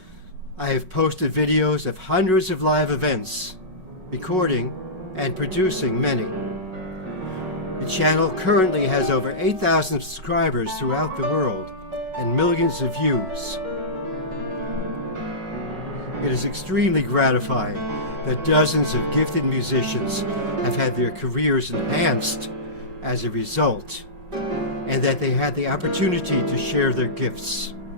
I have posted videos of hundreds of live events, recording and producing many. The channel currently has over 8,000 subscribers throughout the world and millions of views. It is extremely gratifying that dozens of gifted musicians have had their careers enhanced as a result, and that they had the opportunity to share their gifts.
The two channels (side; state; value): left; late; 5.4 ms